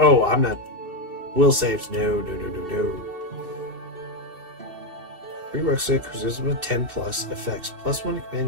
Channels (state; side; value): late; left; 2.7 ms